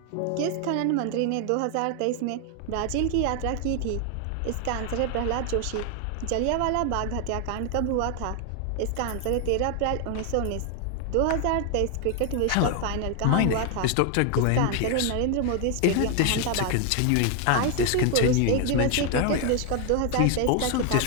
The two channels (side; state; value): both; different; correlation 0.00